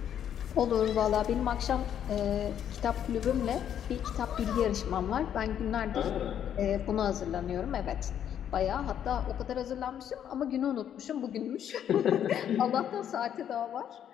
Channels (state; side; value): quieter; right; 9.6 dB